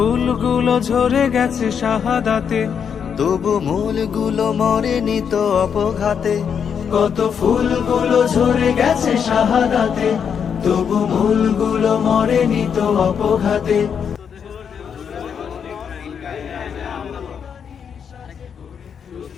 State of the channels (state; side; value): quieter; right; 7.3 dB